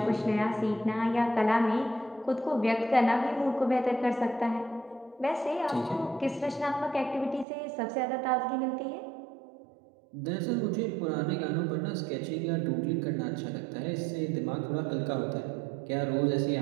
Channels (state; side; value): drops out; left; at 7.5 s